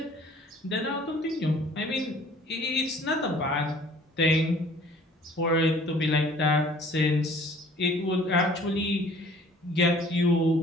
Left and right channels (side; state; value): both; normal; correlation 0.53